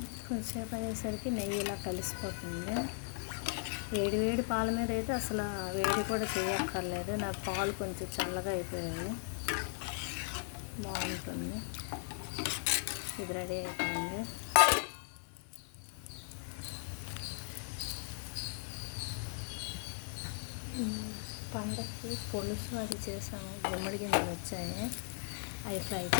కొంచెంసేపు అయ్యేసరికి నెయ్యి ఇలా కలిసిపోతుంది. వేడి వేడి పాల మీద అయితే అసలు వేడి కూడా చేయక్కర్లేదు. నా పాలు కొంచెం చల్లగా అయిపోయాయి, బాగుంటుంది. ఇది రెడీ అయిపోయింది. పండగకి పులుసు అది చేసాము. గుమ్మడి గింజలు వచ్చాయి, అవి ఫ్రై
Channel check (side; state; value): right; silent; 53 dB below the other